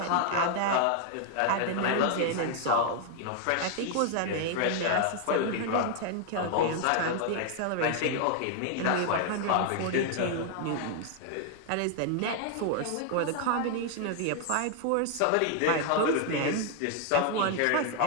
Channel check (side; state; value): both; different; correlation 0.00